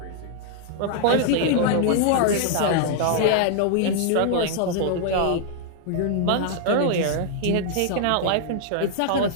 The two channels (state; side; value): different; both; correlation -0.01